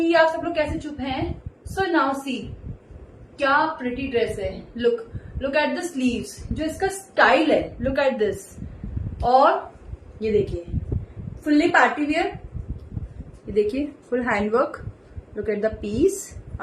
आप सब लोग कैसे चुप हैं? सो नाउ सी, क्या प्रिटी ड्रेस है। लुक एट द स्लीव्स, जो इसका स्टाइल है, लुक एट दिस। और ये देखिए फुल्ली पार्टी वियर, ये देखिए full handwork. Look at the piece.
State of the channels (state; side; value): identical; both; correlation 1.00